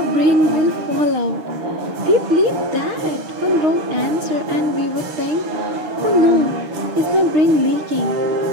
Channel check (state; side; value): late; left; 6.5 ms